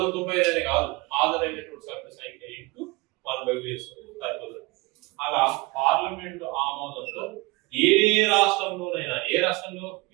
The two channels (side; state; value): left; quieter; 23.8 dB